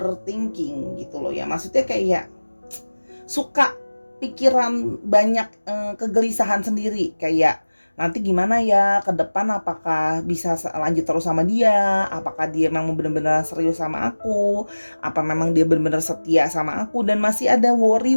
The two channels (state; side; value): inverted; both; correlation -1.00